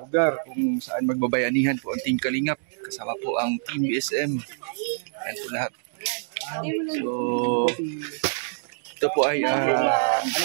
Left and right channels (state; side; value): silent; left; digital silence